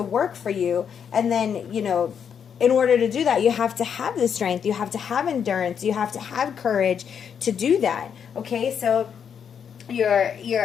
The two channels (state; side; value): quieter; right; 7.6 dB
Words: work for you. And then, in order to do that, you have to have the strength, you have to have endurance, you have to have courage to do that. Okay, so you